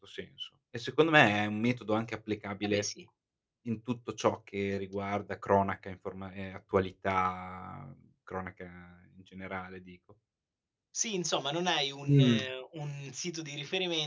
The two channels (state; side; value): identical; both; correlation 1.00